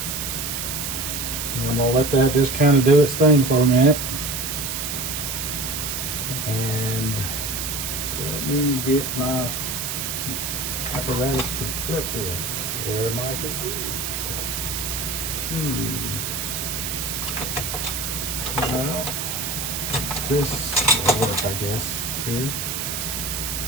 And I'm going to let that just kind of do its thing for a minute. And let me get my apparatus to flip with. Where might it be? Well, this will work, I guess, here.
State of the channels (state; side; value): noise; right; hiss, 3 dB below the sound